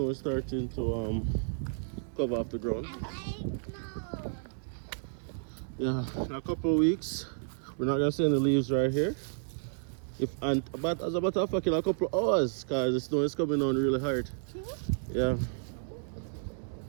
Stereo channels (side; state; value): left; silent; digital silence